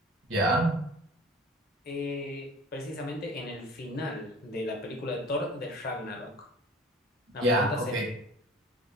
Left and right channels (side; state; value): both; normal; correlation 0.44